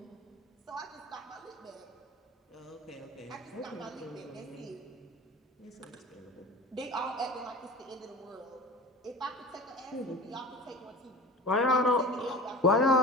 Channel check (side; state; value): both; normal; correlation 0.36